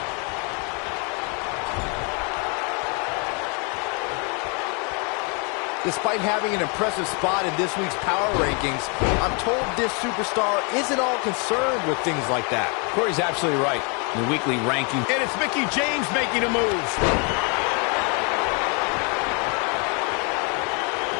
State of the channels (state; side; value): quieter; right; 34.8 dB